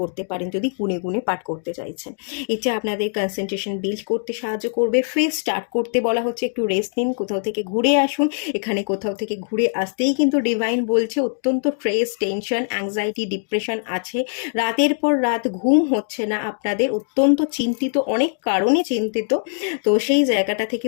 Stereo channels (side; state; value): right; silent; digital silence